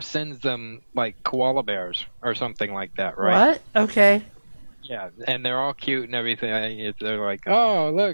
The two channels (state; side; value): inverted; both; correlation -1.00